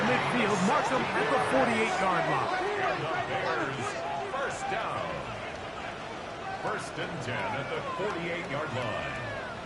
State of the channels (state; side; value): identical; both; correlation 1.00